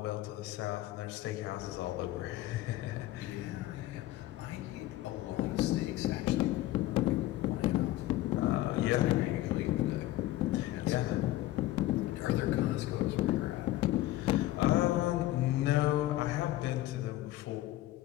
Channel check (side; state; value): right; quieter; 15.6 dB